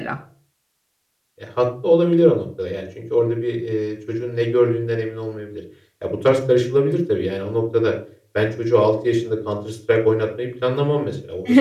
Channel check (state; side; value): identical; both; correlation 1.00